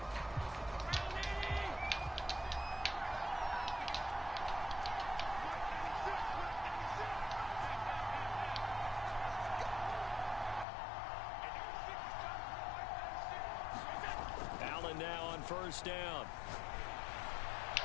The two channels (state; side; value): drops out; right; at 10.7 s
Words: Now on 1st down.